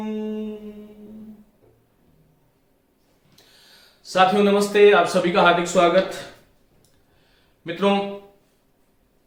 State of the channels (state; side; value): identical; both; correlation 1.00